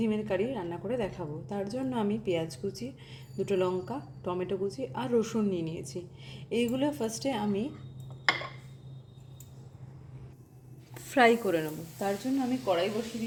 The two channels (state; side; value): identical; both; correlation 1.00